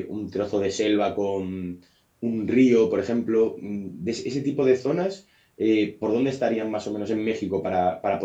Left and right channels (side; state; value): both; identical; correlation 1.00